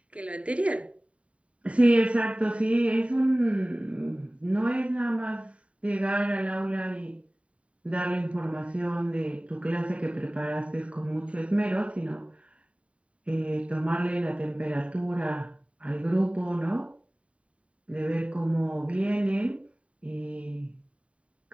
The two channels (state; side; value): late; left; 0.064 ms